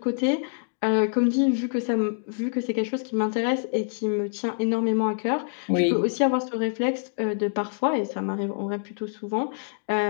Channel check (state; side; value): silent; right; digital silence